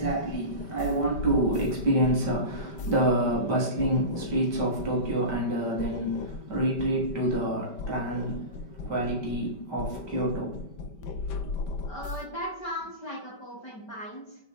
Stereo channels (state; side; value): late; right; 5.2 ms